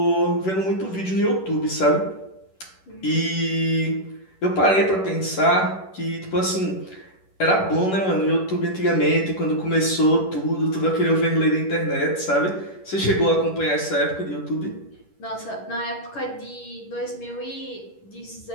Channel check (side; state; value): right; late; 11 ms